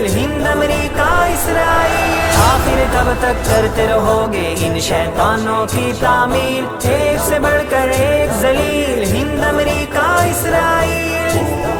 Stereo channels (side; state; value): both; identical; correlation 1.00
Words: ہند امریکہ اسرائیل. آخر کب تک کرتے رہو گے ان شیطانوں کی تعمیل؟ ایک سے بڑھ کر ایک ذلیل ہند امریکہ اسرائیل.